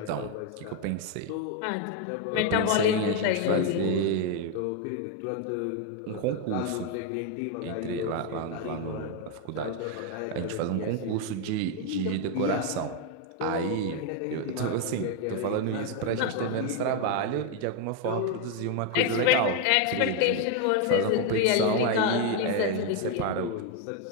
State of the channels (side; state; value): both; different; correlation 0.01